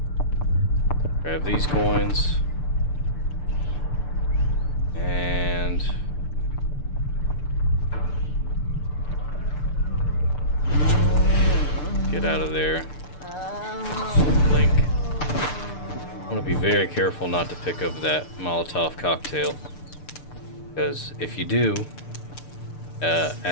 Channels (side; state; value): right; late; 6.8 ms